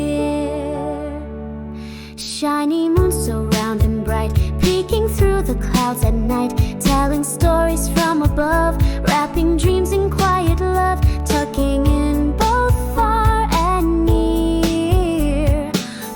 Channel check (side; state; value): both; identical; correlation 1.00